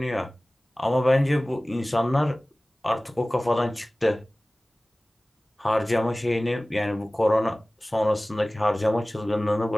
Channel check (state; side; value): normal; both; correlation 0.98